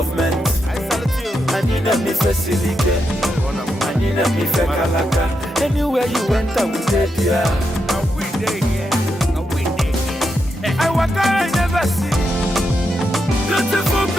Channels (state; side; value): normal; both; correlation 0.84